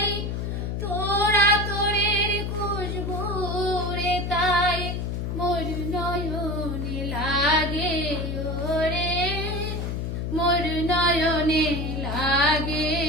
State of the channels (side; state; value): left; noise; hum, 2 dB below the sound